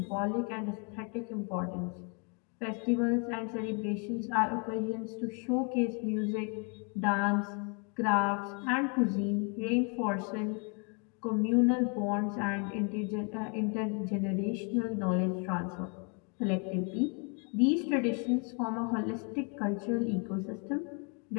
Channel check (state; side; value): quieter; right; 36.6 dB